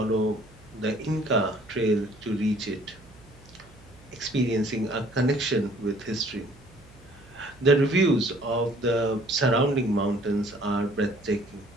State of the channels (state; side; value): noise; right; hum, 24 dB below the sound